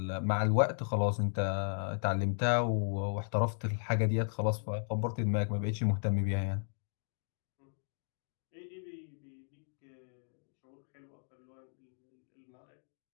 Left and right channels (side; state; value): right; silent; digital silence